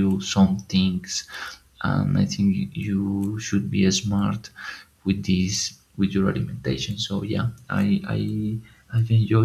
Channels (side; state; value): both; identical; correlation 1.00